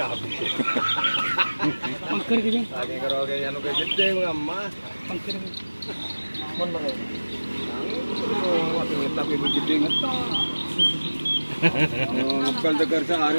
habis. Pangker gini. Lagi kalau kayak anu kayak gede ngamma. Pangker. Mun mere. Waktu tapi begede ngetok. Bukan tegar sehari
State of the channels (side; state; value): both; inverted; correlation -1.00